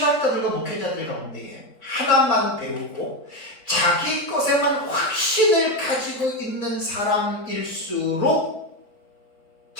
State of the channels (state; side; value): late; right; 4.2 ms